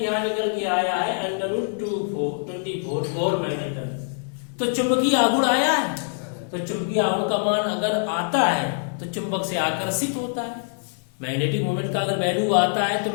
यहाँ निकल के आया है √24 मैग्नेटन। तो चुंबकीय आघूर्ण आया है, तो चुंबकीय आघूर्ण का मान अगर आता है तो चुंबक से आकर्षित होता है। मैग्नेटिक मूवमेंट का अगर वैल्यू आता है तो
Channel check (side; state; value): right; silent; 62 dB below the other